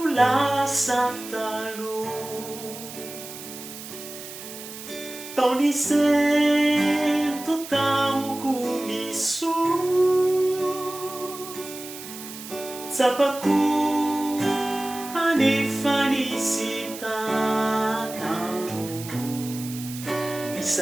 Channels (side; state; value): right; noise; hiss, 12 dB below the sound